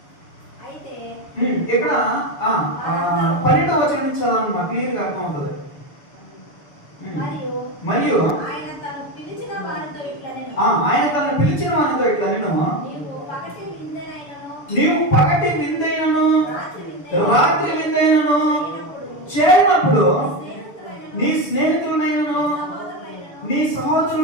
ఇక్కడ 12వ వచనం నుంచి చదవమ్మా, క్లియర్ గా అర్థం అవుతుంది. మరియు ఆయన తను పిలిచిన వారితో ఇట్లా నేను నీవు పగటి విందైనను రాత్రి విందైనను చేయనప్పుడు నీ స్నేహితులనైనను నీ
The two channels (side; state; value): right; late; 6.8 ms